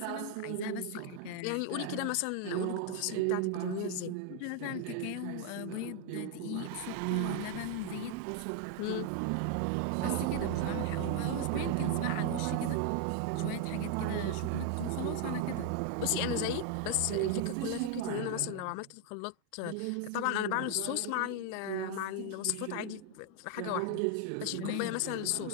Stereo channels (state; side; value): different; both; correlation 0.00